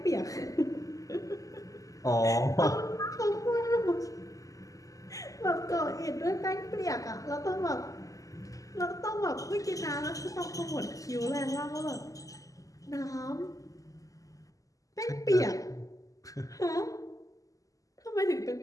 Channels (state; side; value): late; right; 0.17 ms